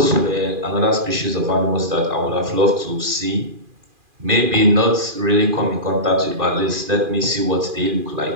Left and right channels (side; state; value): left; late; 2.4 ms